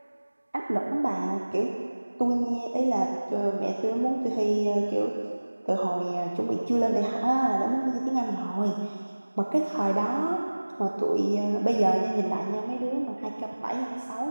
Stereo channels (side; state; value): both; inverted; correlation -1.00